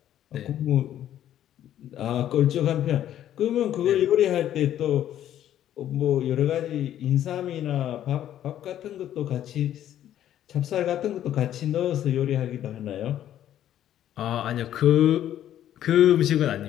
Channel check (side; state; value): right; quieter; 11.4 dB